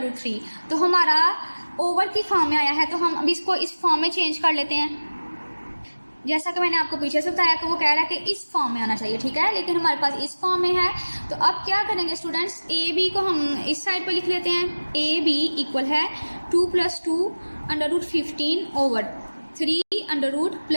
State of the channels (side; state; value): both; inverted; correlation -1.00